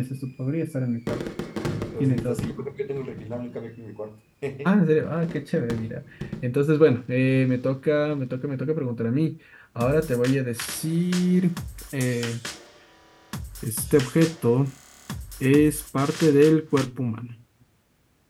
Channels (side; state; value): both; identical; correlation 1.00